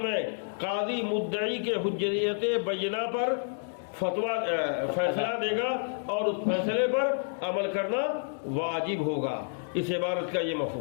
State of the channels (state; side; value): silent; right; digital silence